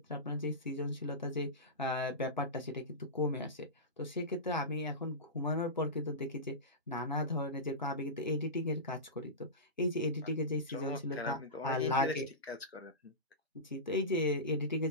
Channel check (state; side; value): normal; both; correlation -0.19